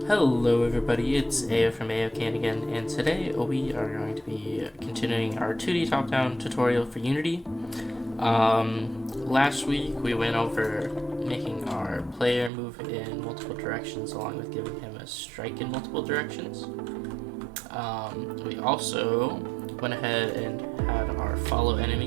Hello everybody, it's AO from AOCan again, and today we are going to be continuing our 2D top-down tutorial for Unity. Last week we went over making our player move in multiple directions along with giving him a strike in multiple directions. We also went ahead and had our follow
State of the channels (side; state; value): left; drops out; at 12.5 s